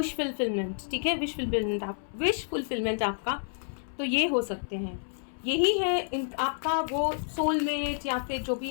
फुलफिलमेंट, ठीक है, विश फुलफिलमेंट आपका, तो ये हो सकते हैं, यही है आपका वो सोलमेट, या फिर जो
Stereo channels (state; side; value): silent; right; 58 dB below the other